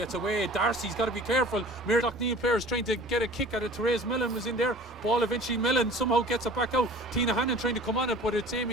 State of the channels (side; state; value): both; normal; correlation 0.44